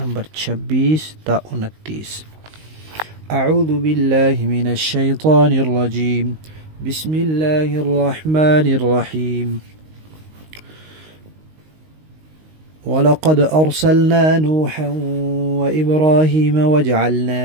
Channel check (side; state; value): left; late; 19 ms